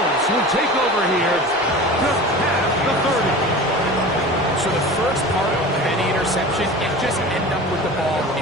will take over here just past the 30. So the first part of any interception is just end up with the ball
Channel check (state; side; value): normal; both; correlation 0.35